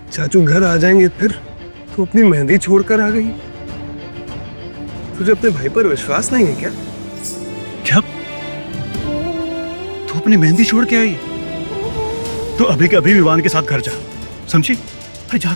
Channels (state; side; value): inverted; both; correlation -1.00